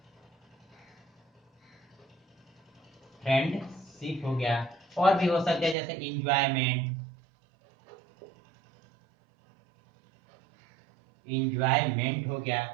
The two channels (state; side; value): drops out; left; at 5.8 s